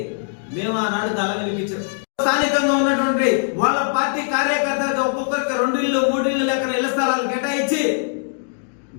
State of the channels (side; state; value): right; silent; digital silence